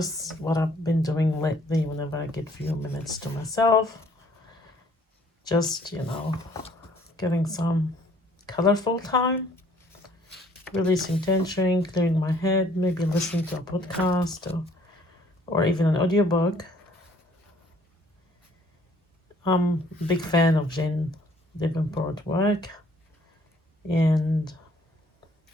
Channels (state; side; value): normal; both; correlation 0.60